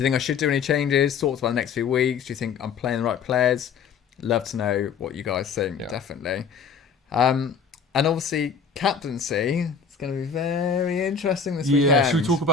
you think I should do any changes? Thoughts about the next few weeks? Do you think I'm playing the right players? Love to know what you guys think, definitely. And obviously, captaincy. It's going to be very interesting this weekend. Yeah, should we talk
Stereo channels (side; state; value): right; quieter; 6.1 dB